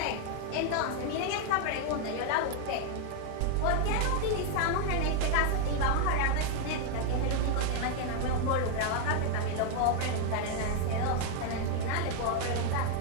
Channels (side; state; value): both; different; correlation 0.00